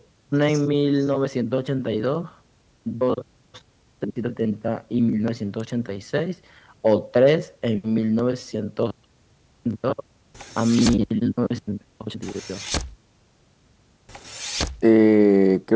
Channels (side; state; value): both; identical; correlation 1.00